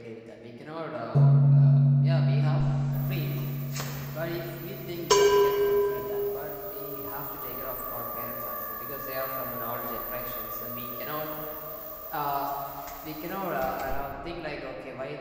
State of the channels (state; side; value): identical; both; correlation 1.00